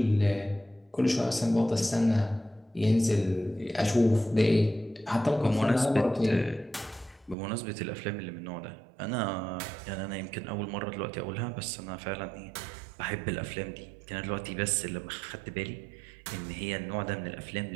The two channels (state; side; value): drops out; left; at 7.4 s